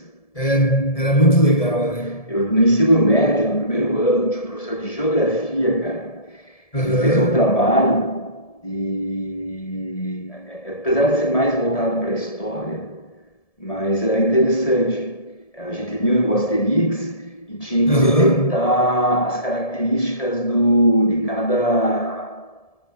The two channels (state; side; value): late; right; 1.7 ms